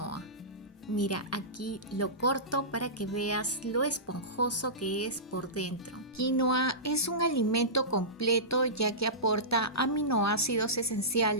Mira, aquí lo corto para que veas lo esponjoso que es por dentro. Quinoa es un alimento completo ya que aporta aminoácidos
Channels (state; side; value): normal; both; correlation -0.19